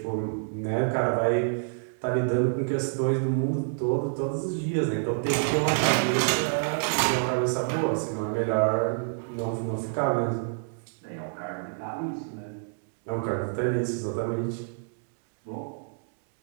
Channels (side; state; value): left; silent; digital silence